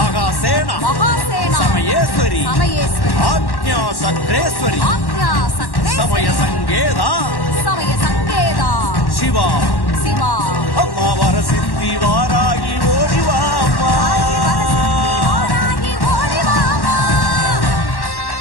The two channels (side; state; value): right; late; 1.1 ms